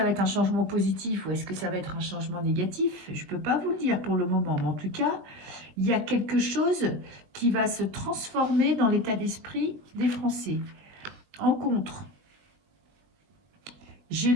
va être un changement positif ou est-ce que ça va être un changement négatif? Je ne peux pas vous le dire pour le moment, mais en tout cas, il y a quelque chose qui va se transformer dans l'état d'esprit des Français. En contre, j'ai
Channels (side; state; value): left; late; 21 ms